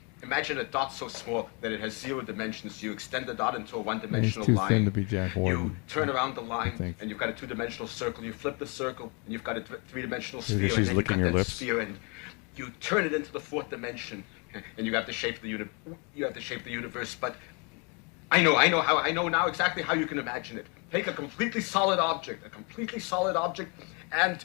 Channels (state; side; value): quieter; right; 32.8 dB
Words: Imagine a dot so small that it has 0 dimensions. You extend the dot into a one-dimensional He's too line. thin to be Jack Warden. You turn around the I line, think. and you've got a 2-dimensional circle. You flip the circle, and you've got a 3-dimensional Maybe sphere. she's and then licking you've your got that lips. sphere, and you turn it into the 4th dimension, and you have the shape of the universe. But I know now exactly how you can imagine it. Take a completely solid object, and